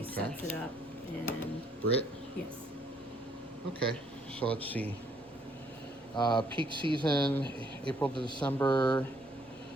sets it up, and Britt? yes. Okay, so let's see. Peak season, April to December,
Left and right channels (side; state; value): both; normal; correlation 0.67